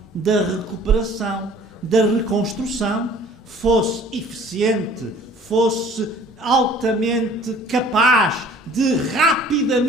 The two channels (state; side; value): normal; both; correlation 0.52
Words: da recuperação, da reconstrução, fosse eficiente, fosse altamente capaz de